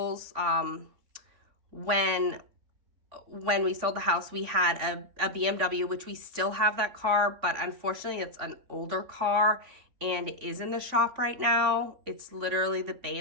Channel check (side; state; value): left; late; 3.5 ms